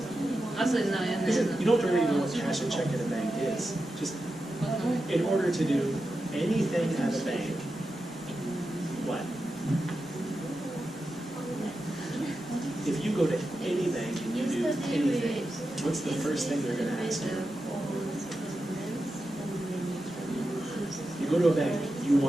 you don't really know what cash a check in a bank is. Just in order to do anything at a bank, what? If you go to any bank and you do anything, what's the first thing they're going to ask you? go to a bank, you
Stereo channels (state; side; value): normal; both; correlation 0.90